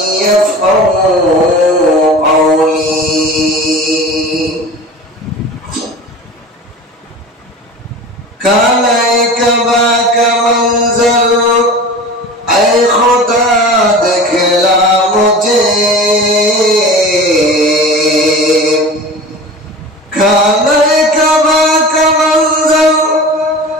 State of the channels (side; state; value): both; normal; correlation 0.35